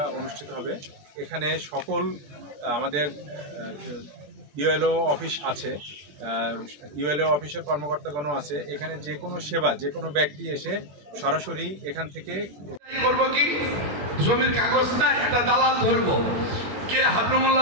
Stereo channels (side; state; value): left; late; 20 ms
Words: অনুষ্ঠিত হবে। এখানে সকল আমাদের ইউএলও অফিস আছে, ইউএলও অফিসের কর্মকর্তাগণও আছে। এখানে যে কোনো সেবা, যে কোনো ব্যক্তি এসে সরাসরি এখান থেকে করবো কি, জমির কাগজ না একটা দালাল ধরবো, কে